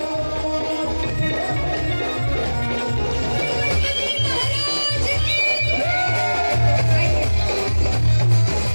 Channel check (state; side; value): inverted; both; correlation -1.00